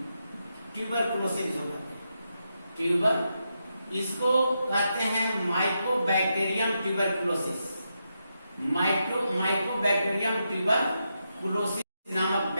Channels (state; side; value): inverted; both; correlation -0.85